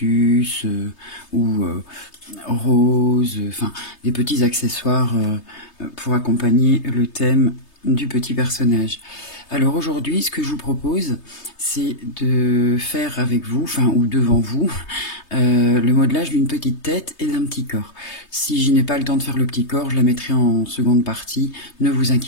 ou roses, enfin des petits accessoires pour accompagner le thème du petit personnage. Alors aujourd'hui, ce que je vous propose, c'est de faire avec vous, enfin ou devant vous, le modelage d'une petite tête et d'un petit corps. Si je n'ai pas le temps de faire le petit corps, je la mettrai en seconde partie, ne vous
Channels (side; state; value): right; late; 3.3 ms